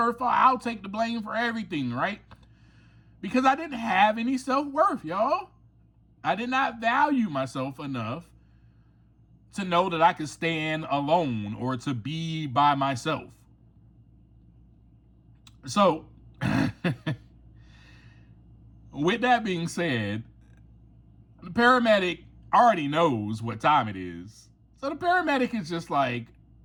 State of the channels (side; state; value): both; identical; correlation 1.00